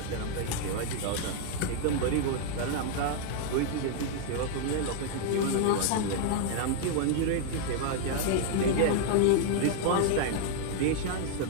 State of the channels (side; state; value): both; different; correlation 0.00